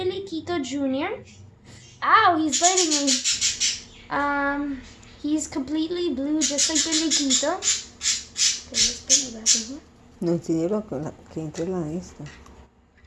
Jr. Ow, he's biting me. He's completely blue, just like Peliquito. Okay, let's put you back in here. No quiero que entre la esta.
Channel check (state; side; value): identical; both; correlation 1.00